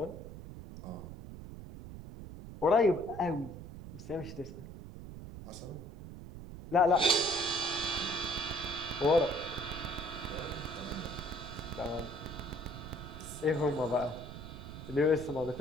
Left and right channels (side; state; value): right; noise; rumble, 12 dB below the sound